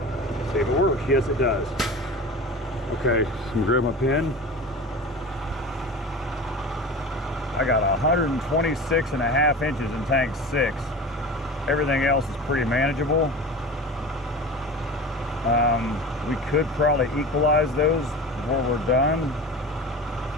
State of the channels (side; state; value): both; normal; correlation 0.33